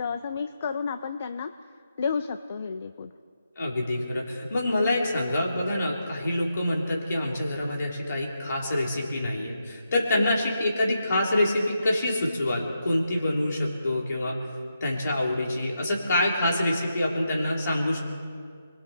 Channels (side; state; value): both; inverted; correlation -0.84